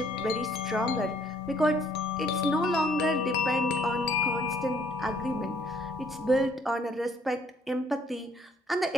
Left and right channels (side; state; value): both; normal; correlation 0.64